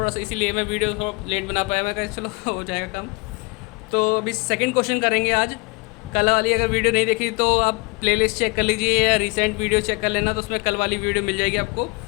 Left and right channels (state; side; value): quieter; right; 27.7 dB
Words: सा इसीलिए मैं वीडियो थोड़ा लेट बना पाया, मैं कहा चलो हो जाएगा काम। तो अभी सेकंड क्वेश्चन करेंगे आज। कल वाली अगर वीडियो नहीं देखी तो आप प्लेलिस्ट चेक कर लीजिए या रिसेंट वीडियो चेक कर लेना, तो उसमें कल वाली वीडियो मिल जाएगी आपको।